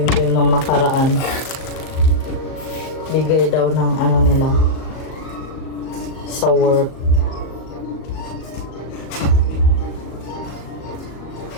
nung nakaraan. Bigay daw ng nila sa work.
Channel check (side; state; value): right; late; 38 ms